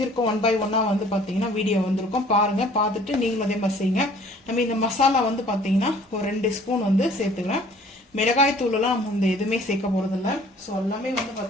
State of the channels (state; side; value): normal; both; correlation 0.53